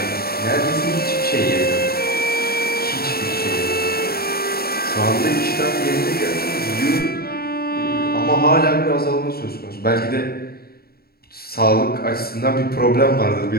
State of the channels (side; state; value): right; late; 0.45 ms